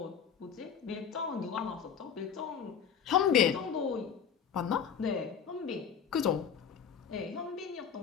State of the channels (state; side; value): quieter; right; 7.5 dB